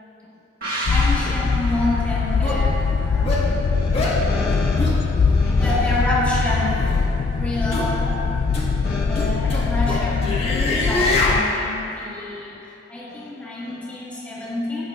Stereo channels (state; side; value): quieter; right; 3.3 dB